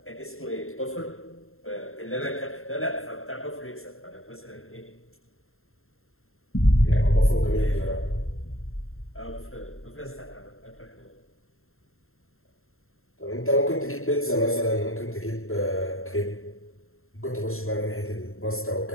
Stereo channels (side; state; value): right; late; 0.61 ms